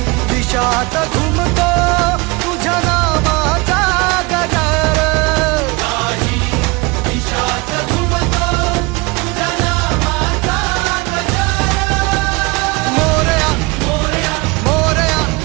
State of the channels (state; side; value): quieter; left; 25.6 dB